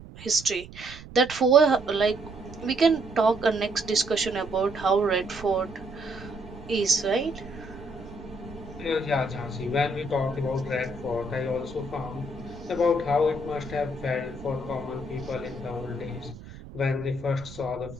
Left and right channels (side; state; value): right; noise; rumble, 16 dB below the sound